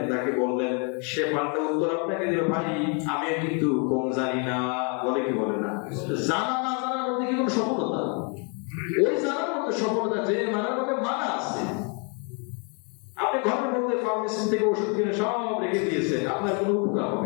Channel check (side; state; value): right; quieter; 37.1 dB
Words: তাকে বললেন, সে পাল্টা উত্তর আপনাকে দিল, ভাই আমি কিন্তু কম জানি না। বলে কি বলে না? জানা না জানার মধ্যে কি কোনো সফলতা? ওই জানার মধ্যে সফলতা যে মানার মধ্যে মানা আছে। আপনি ঘরের মধ্যে ফার্মেসি থেকে ওষুধ কিনে সব রেখে দিয়েছেন, আপনার কোনো উপকার